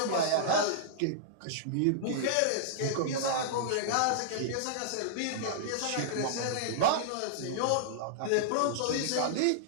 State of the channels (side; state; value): both; different; correlation -0.02